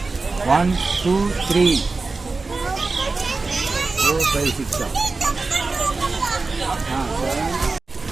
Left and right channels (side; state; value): left; quieter; 3.8 dB